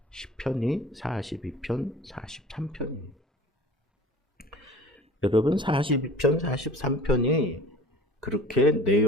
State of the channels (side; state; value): both; normal; correlation 0.44